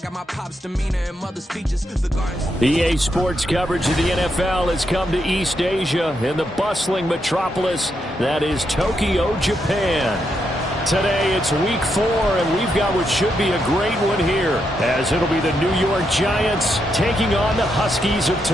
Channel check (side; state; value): both; normal; correlation 0.81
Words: my pop's demeanor and mother speeches. The gardens. EA Sports coverage of the NFL has come to East Asia in the bustling metropolis that is Tokyo, Japan. Today it's week 4, and we've got what should be a great one here, as it'll be the New York Giants taking on the Huskies of